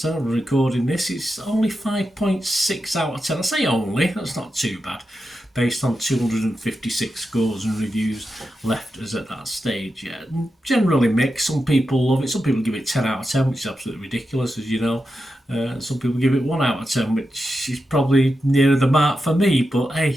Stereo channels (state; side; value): normal; both; correlation 0.89